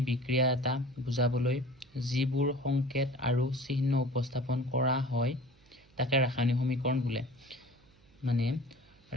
বিক্ৰিয়া এটা বুজাবলৈ যিবোৰ সংকেত আৰু চিহ্ন উপস্থাপন কৰা হয় তাকে ৰাসায়নিক সমীকৰণ বোলে। মানে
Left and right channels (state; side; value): noise; right; hum, 29 dB below the sound